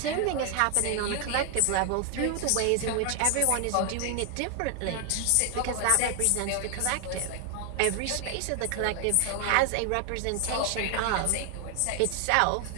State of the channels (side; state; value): both; different; correlation 0.00